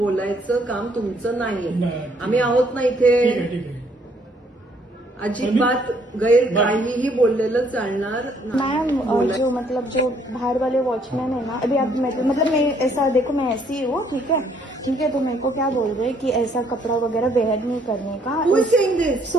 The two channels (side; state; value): both; normal; correlation 0.66